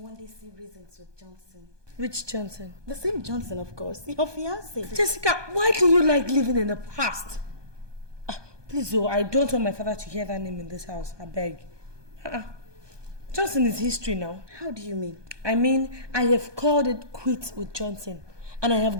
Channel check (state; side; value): late; left; 1.2 ms